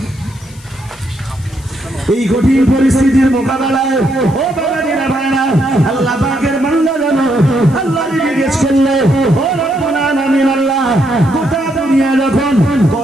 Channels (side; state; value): left; noise; hiss, 24 dB below the sound